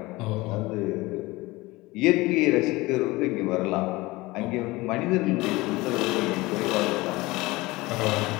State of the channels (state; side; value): quieter; right; 21.1 dB